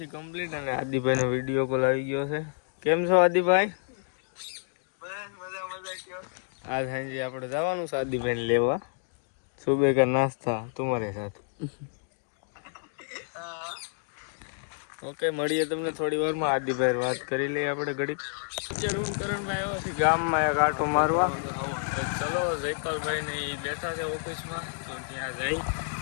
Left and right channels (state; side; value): silent; right; digital silence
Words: છે કમ્પ્લીટ અને આદિભાઈનો વિડીયો કોલ આવી ગયો છે. કેમ છો આદિભાઈ? બસ મજા કયો. આજ સાંજે આપણે જવાનું છે આદિભાઈને લેવા. સુબહ કા નાસ્તા તમારે સાથ. ઓકે મળીએ તમને થોડી વારમાં. આદિભાઈ વાત કરી લઈએ આપણે ઘડીક. અત્યારે હું કરણભાઈ આવ્યો છે ગામમાં એક આંટો મારવા. ચલો જયપાલભાઈ ને એ બેઠા છે ઓફિસમાં તો ત્યાં જઈ.